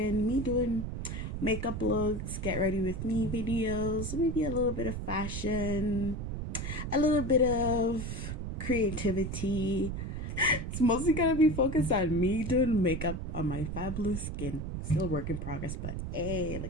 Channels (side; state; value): right; noise; rumble, 4 dB below the sound